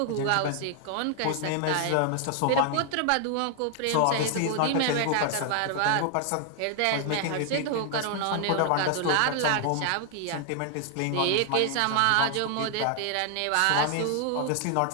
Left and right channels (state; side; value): different; both; correlation 0.00